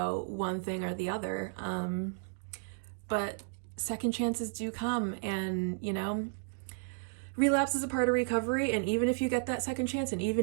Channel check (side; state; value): left; silent; digital silence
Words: one thing or the other. But second chances do come, and relapse is a part of recovery, and even if you get that second chance, and